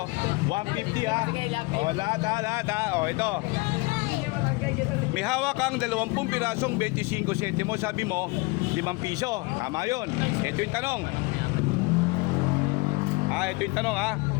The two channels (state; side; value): quieter; right; 25.7 dB